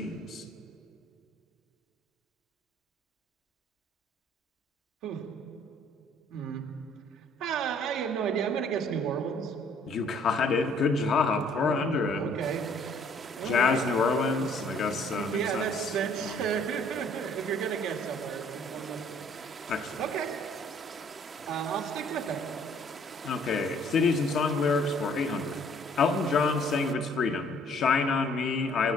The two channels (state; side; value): normal; both; correlation 0.59